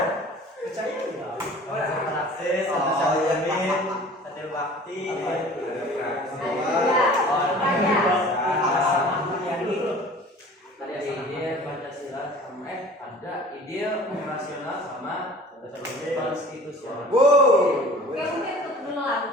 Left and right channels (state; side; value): normal; both; correlation 0.45